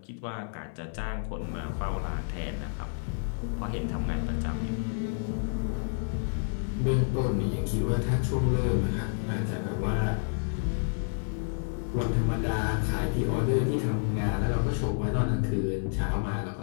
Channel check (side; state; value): right; silent; 58 dB below the other